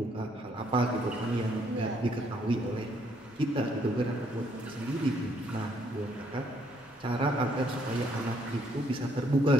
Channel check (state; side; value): normal; both; correlation 0.68